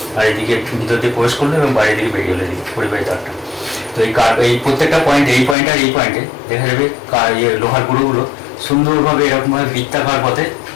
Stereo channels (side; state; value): right; drops out; at 5.6 s